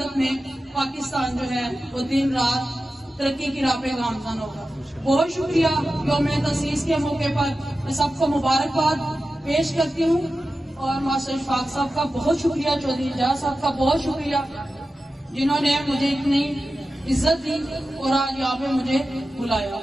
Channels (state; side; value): normal; both; correlation 0.93